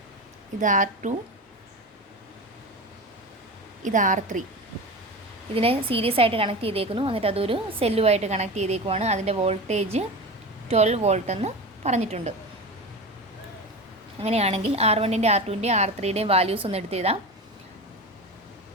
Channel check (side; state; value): both; normal; correlation 0.27